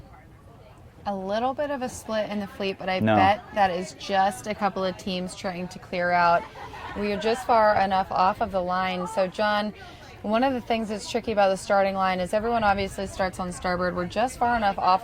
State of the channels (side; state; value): both; identical; correlation 1.00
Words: A little bit of a split in the fleet, but I bet that is just a couple of teams trying to clear out. We are just far enough off of the line. So, John, one of the things that's tricky about the starting line is everyone obviously starts on starboard. We're just far enough